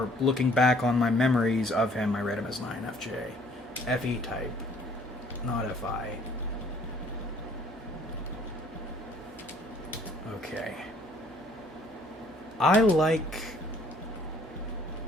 looking back on my memories of him, I read him as an INFJ. FE type, not FI. Okay. I like,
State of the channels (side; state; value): both; normal; correlation 0.59